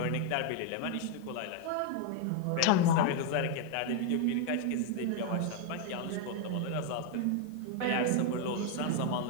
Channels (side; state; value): both; different; correlation 0.00